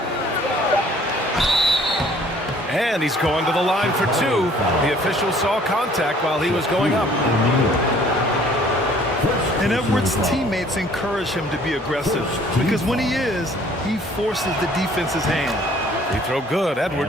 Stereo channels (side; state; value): both; normal; correlation 0.56